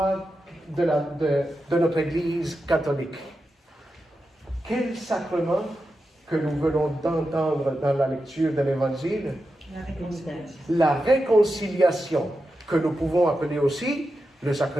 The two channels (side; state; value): both; normal; correlation 0.89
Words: de notre Église catholique. Quel sacrement que nous venons d'entendre dans la lecture de l'Évangile? La réconciliation, que nous pouvons appeler aussi le